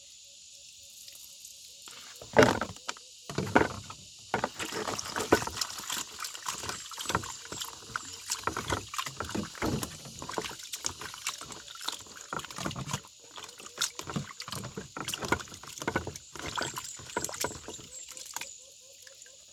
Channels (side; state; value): both; identical; correlation 1.00